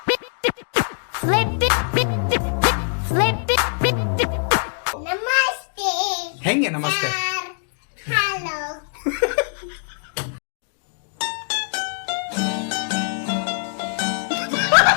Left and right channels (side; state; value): right; silent; digital silence